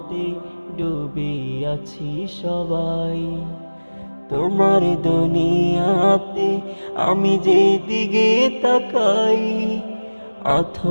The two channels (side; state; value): both; inverted; correlation -1.00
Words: ডুবে আছি সবাই। তোমার দুনিয়াতে আমি যেদিকে তাকাই,